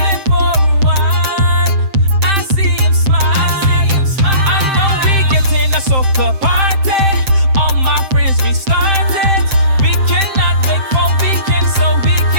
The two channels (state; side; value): late; left; 7.7 ms